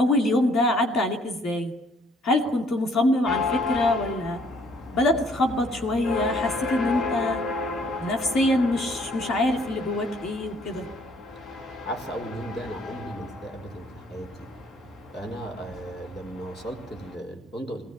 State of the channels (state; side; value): normal; both; correlation 0.62